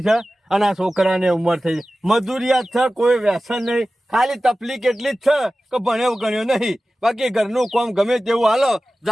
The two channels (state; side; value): normal; both; correlation 0.96